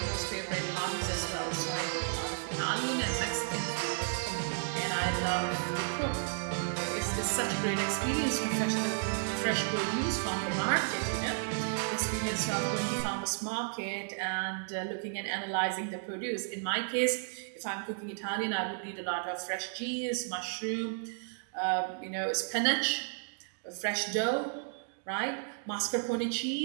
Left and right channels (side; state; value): left; silent; digital silence